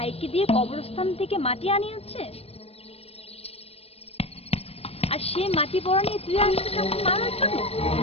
দিয়ে কবরস্থান থেকে মাটি আনিয়েছে, আর সে মাটি পড়া নিয়ে তুই আসছিস আমাকে মারার জন্য।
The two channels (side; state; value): right; late; 0.29 ms